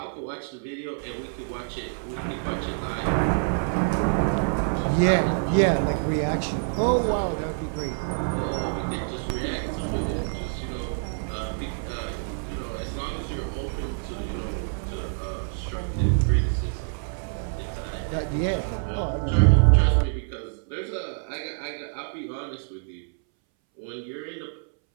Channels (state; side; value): silent; left; 61 dB below the other